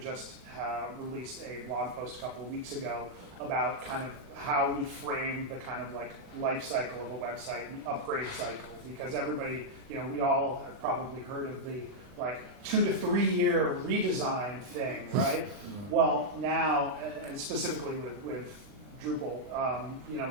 released a blog post a couple of weeks ago about kind of how we frame the kind of like life cycle of a website and the upgrade cycle, because everybody, we all have probably heard of the like 2 to 3 year redesign thing, right? Well, now, and specifically with Drupal,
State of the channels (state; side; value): late; left; 39 ms